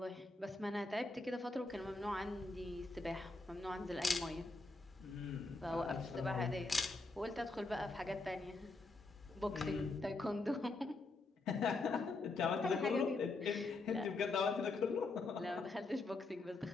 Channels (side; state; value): right; quieter; 3.3 dB